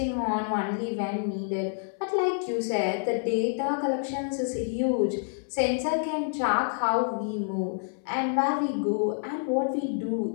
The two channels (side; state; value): right; silent; 59 dB below the other